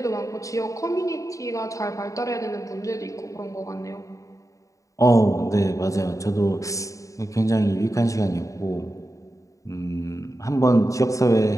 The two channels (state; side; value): late; right; 0.16 ms